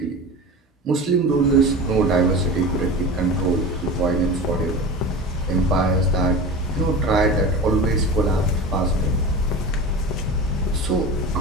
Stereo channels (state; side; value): normal; both; correlation 0.31